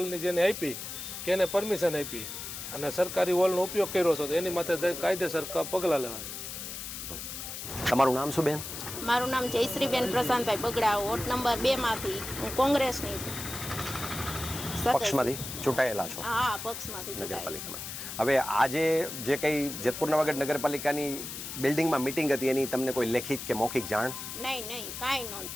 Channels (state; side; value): noise; left; hiss, 8 dB below the sound